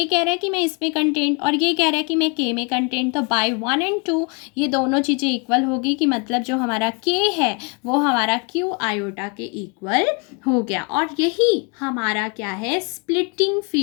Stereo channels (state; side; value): quieter; right; 32.6 dB